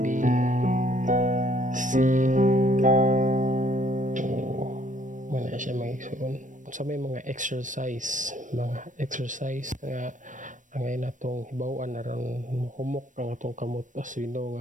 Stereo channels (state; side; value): late; left; 0.37 ms